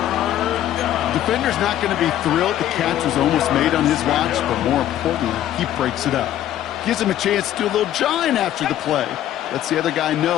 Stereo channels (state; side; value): quieter; right; 12.1 dB